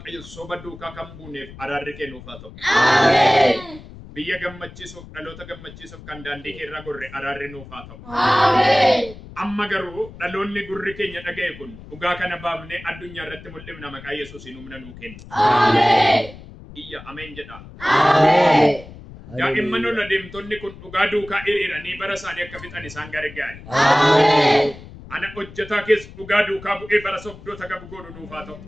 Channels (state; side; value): noise; left; rumble, 17 dB below the sound